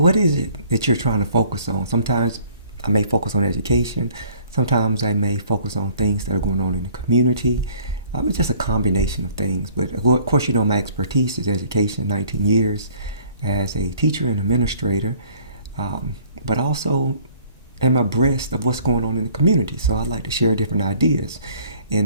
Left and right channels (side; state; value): both; inverted; correlation -0.57